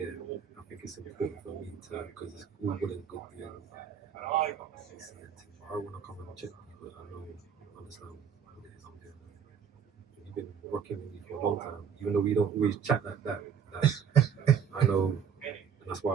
I think it's important for me to, because it's all good and good doing. I want to come and check you, but I understand what it is I'm doing. You've been rocking with me for a long time, even though we don't always chat like that. I know, and that's why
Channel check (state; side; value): quieter; left; 7.6 dB